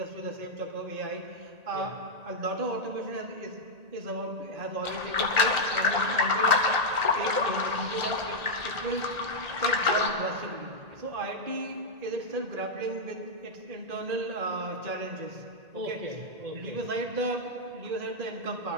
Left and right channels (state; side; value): late; left; 1.8 ms